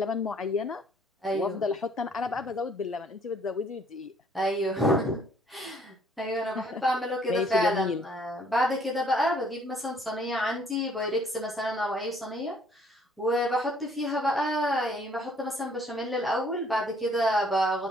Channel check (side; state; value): both; normal; correlation 0.62